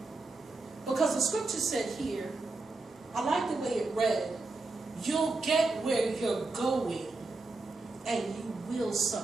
Because the scripture said here, I like the way it read, you'll get where you're going and you will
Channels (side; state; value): left; quieter; 3.4 dB